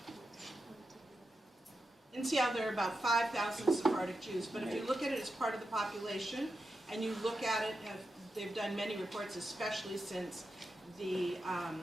there are about 5,000 Sephardic Jews. But if you look at it as part of the population, and you look at it, they've done many reports, especially since the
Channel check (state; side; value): normal; both; correlation 0.89